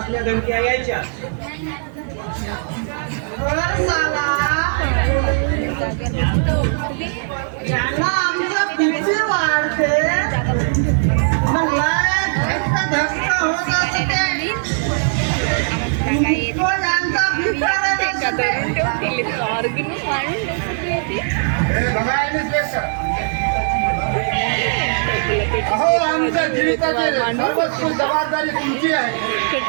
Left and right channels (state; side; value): silent; left; 65 dB below the other